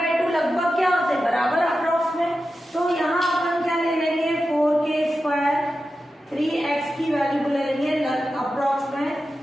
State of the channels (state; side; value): normal; both; correlation 0.91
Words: लगभग क्या होते हैं, बराबर अप्रॉक्स में, तो यहाँ अपन क्या ले लेंगे, 4k² 3x की वैल्यू को ले लेंगे अप्रॉक्स में,